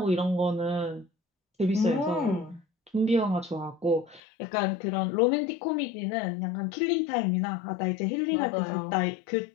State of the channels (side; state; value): right; drops out; at 4.2 s